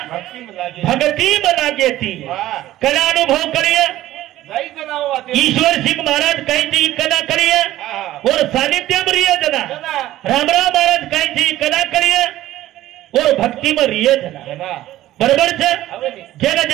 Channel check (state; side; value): quieter; left; 14.7 dB